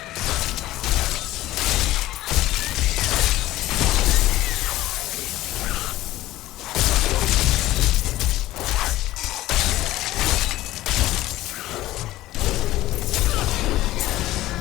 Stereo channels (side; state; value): right; quieter; 16.1 dB